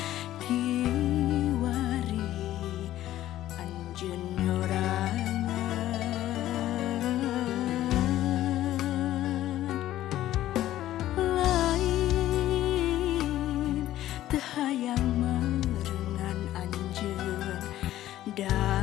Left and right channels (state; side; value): quieter; right; 13.7 dB